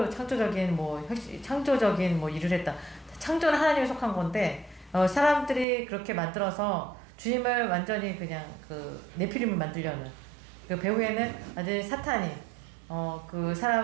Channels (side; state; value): left; drops out; at 5.7 s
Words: 뭐 일을 했다. 창조는 하나님에 속한 건데 사람들이 그렇게 만들어서 주님을 완전히 그냥 그 네피림을 만들려는 그 배후에는 완전히 사탄이 그